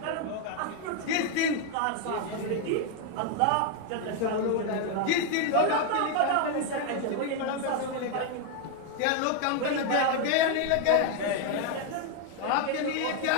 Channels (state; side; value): different; both; correlation 0.01